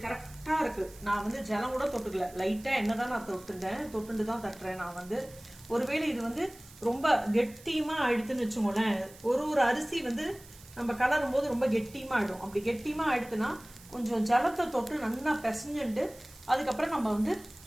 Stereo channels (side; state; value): right; noise; hiss, 21 dB below the sound